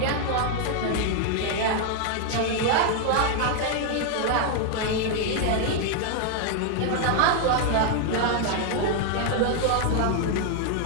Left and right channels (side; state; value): both; different; correlation 0.00